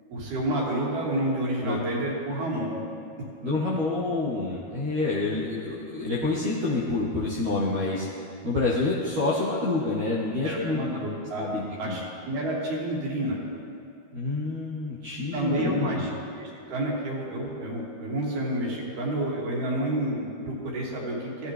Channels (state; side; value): late; left; 13 ms